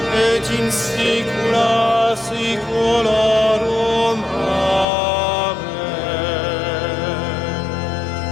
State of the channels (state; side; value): drops out; right; at 4.9 s